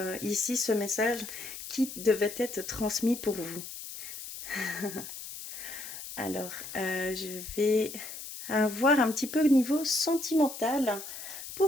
ici ce message qui devait être transmis pour vous. Alors, je vais voir un petit peu au niveau sentimental.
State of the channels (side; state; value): left; noise; hiss, 10 dB below the sound